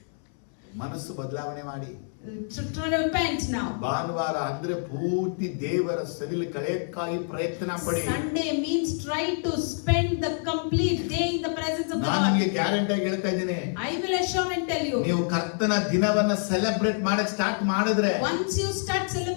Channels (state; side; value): silent; right; 60 dB below the other